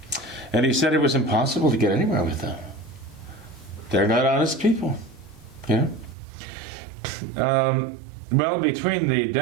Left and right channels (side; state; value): left; drops out; at 6.2 s